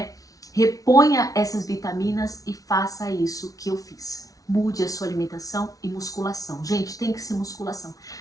Reponha essas vitaminas e faça isso que eu fiz. Mude a sua alimentação e musculação. Gente, tem que ser musculação.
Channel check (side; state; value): right; late; 0.18 ms